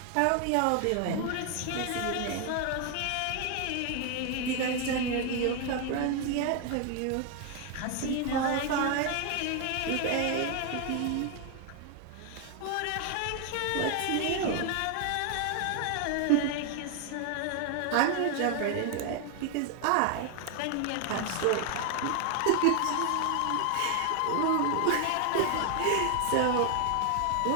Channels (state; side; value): different; both; correlation 0.01